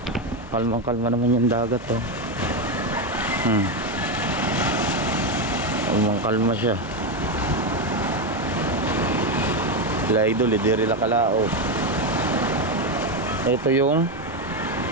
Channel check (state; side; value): normal; both; correlation 0.09